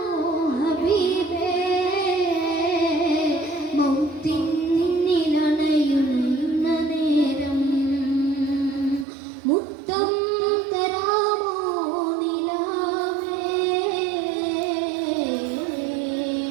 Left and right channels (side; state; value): left; drops out; at 9.1 s